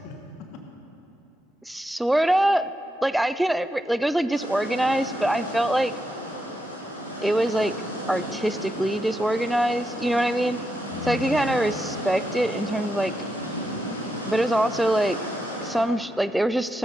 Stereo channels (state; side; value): normal; both; correlation 0.84